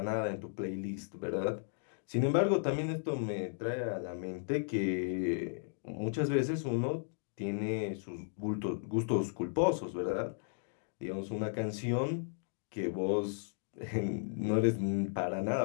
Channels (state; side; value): silent; right; digital silence